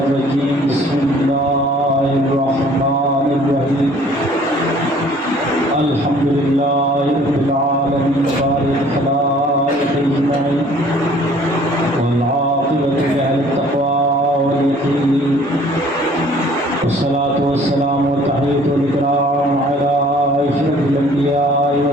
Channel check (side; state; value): both; normal; correlation 0.54